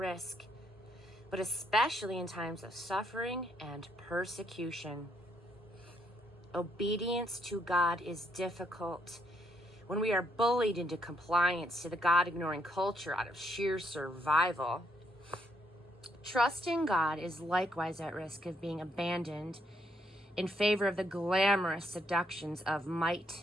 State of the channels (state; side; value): normal; both; correlation 0.74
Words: but especially in times of suffering and persecution. Obedience to God is difficult when we are bullied into compliance to the God-ignoring culture out of sheer survival. Trusting God is likewise at risk of being abandoned in favor of the glamorous seductions of